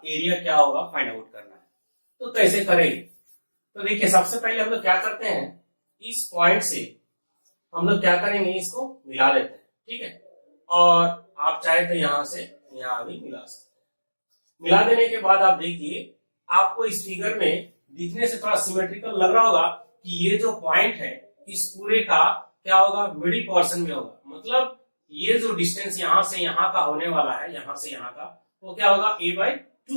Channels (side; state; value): both; inverted; correlation -1.00